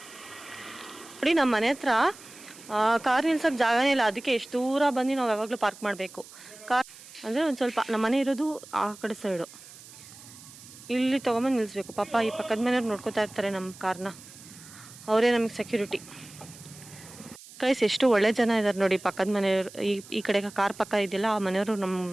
ನೋಡಿ. ನಮ್ಮ ಮನೆ ಹತ್ರ ಕಾರ್ ನಿಲ್ಸೋಕ್ಕೆ ಜಾಗನೇ ಇಲ್ಲ, ಅದಕ್ಕೆ ಎಷ್ಟು ದೂರ ಬಂದು ನಾವು ಯಾವಾಗಲೂ ಪಾರ್ಕ್ ಮಾಡಬೇಕು. ಕಾರ್ ಅಂದರೆ ಒಂದು ಸ್ವಲ್ಪ ನಮ್ಮ ಮನೆ ಇರೋದು ಆ ಕಡೆ ಸೈಡು, ಇಲ್ಲಿ ತೊಗೊಂಬಂದು ನಿಲ್ಲಿಸ್ಬೇಕು. ಪಾಪ ಈ ಪಕ್ಕದ ಮನೆಯವ್ರು ನೋಡ್ಕೋತಾ ಇರ್ತಾರೆ ನಮ್ಮ ಕಾರ್ನ, ಅವರೇ ನಮಗೆ ಸೆಕ್ಯೂರಿಟಿ. ಗೈಸ್, ಎಷ್ಟು ಒಳ್ಳೆ ಜನ ಇದ್ದಾರೆ ನೋಡಿ ಪಕ್ಕದ ಮನೆಯವರು. ಈ ಕಡೆ ಕಾರ್ ಪಕ್ಕ ಇದೆಯಲ್ಲ, ಆ ಮನೆಯವರು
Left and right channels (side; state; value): right; noise; hiss, 19 dB below the sound